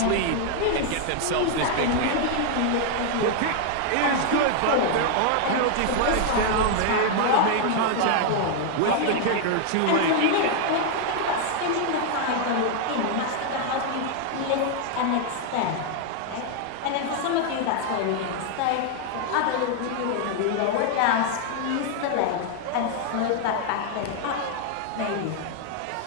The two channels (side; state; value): both; different; correlation 0.00